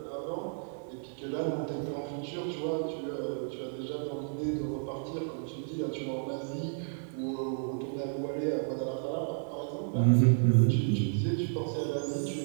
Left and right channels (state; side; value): silent; left; digital silence